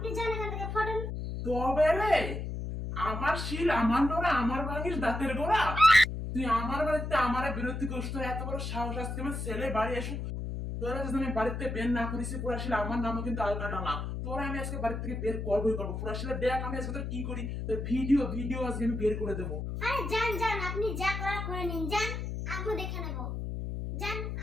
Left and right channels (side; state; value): left; noise; hum, 4 dB below the sound